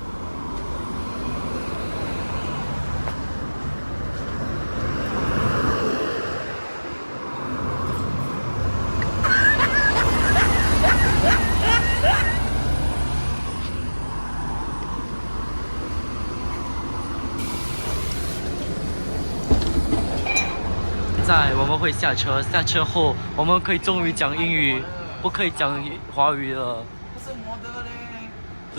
我们会下车，下车后我们可以终于讲英语，不可以讲华语了。不是摩的嘞。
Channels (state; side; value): inverted; both; correlation -1.00